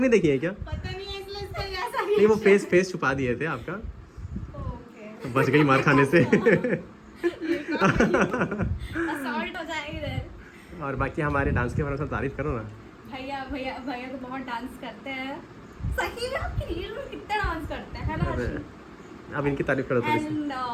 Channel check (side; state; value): both; identical; correlation 1.00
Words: देखी है क्या? पता नहीं है इसलिए इसका ऐसा नहीं वो फेस छुपा दिए थे आपका, ओके। तो बच गई मार खाने से। असॉल्ट हो जाएगा इधर। और बाकी हमारे डांस के बारे में तारीफ करो ना। भैया तो बहुत डांस करते हैं। सही में आपकी रील में कितना डांस करते हैं, है ना? अरे अब इनकी तारीफ करो थोड़ी सी। एंड